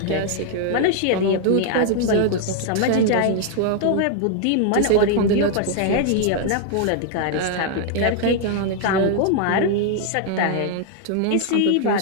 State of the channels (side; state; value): both; different; correlation 0.00